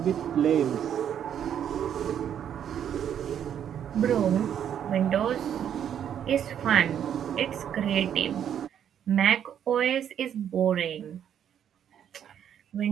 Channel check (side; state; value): left; quieter; 9.3 dB